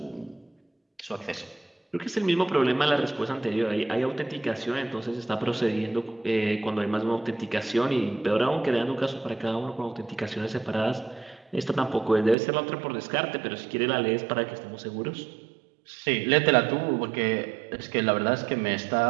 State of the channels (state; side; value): drops out; left; at 12.4 s